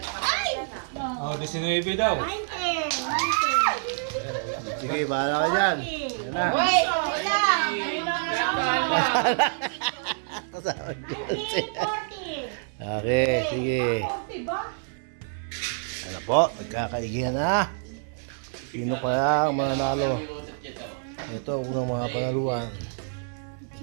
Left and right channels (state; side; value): silent; left; 60 dB below the other